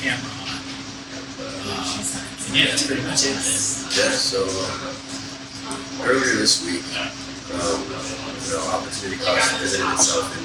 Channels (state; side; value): identical; both; correlation 1.00